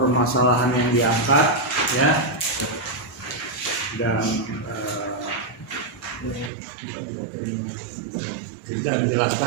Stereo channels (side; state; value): left; drops out; at 6.5 s